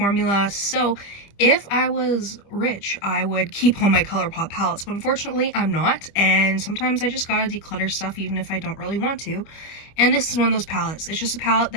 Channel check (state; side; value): late; right; 25 ms